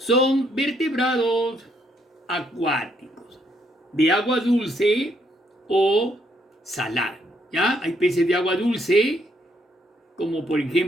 vertebrados acuáticos, de agua dulce o salada. ¿Ya? Hay peces de agua dulce, como por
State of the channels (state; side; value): normal; both; correlation 0.72